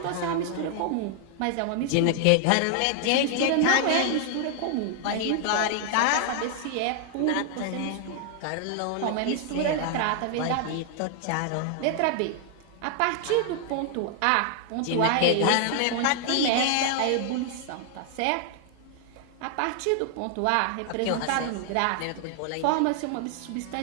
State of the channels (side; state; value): both; different; correlation 0.00